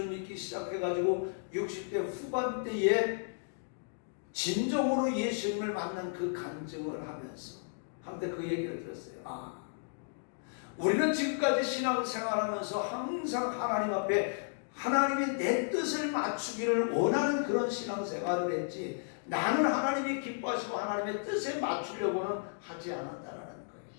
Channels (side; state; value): right; silent; digital silence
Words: 믿기 시작해가지고 60대 후반대에 진정으로 예수님을 만난 그 간증을 하면서 한때 그 얘기를 들었어요. 우리는 지금까지 신앙생활하면서 항상 하나님 앞에 하나님이 내 뜻을 맞추기를 원하는 그런 신앙생활을 했지 나는 하나님이 기뻐하시고 하나님의 뜻에 맞추려고는 하지 않았다라는 거예요.